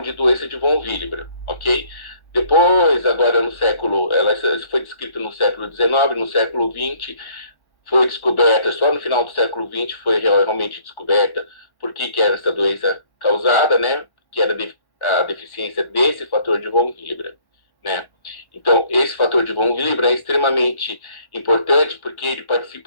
de doença de von Willebrand, ok? Depois, agora no século, ela foi descrita no século XIX, no século XX, foi descoberta, só no final do século XX foi realmente descoberta por que era essa doença causada, né? Que era a deficiência desse fator de von Willebrand, né? Então, esse fator de von Willebrand é extremamente importante porque ele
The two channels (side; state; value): right; late; 1.1 ms